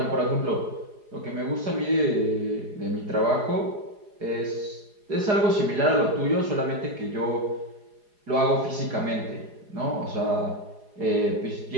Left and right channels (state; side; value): late; left; 4.8 ms